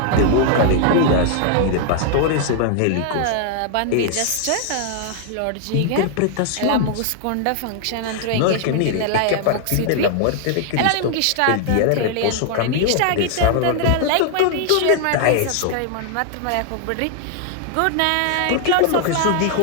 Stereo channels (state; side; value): different; both; correlation 0.00